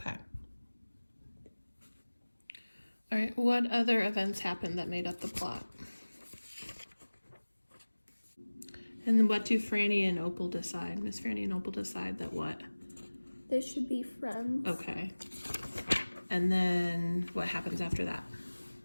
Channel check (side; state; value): both; inverted; correlation -1.00